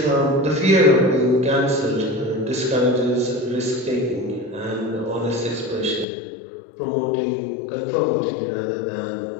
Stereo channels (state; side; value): drops out; right; at 6.1 s